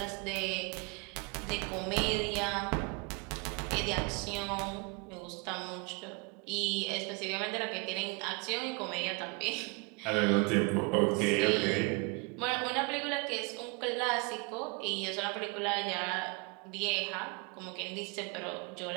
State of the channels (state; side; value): quieter; left; 31.0 dB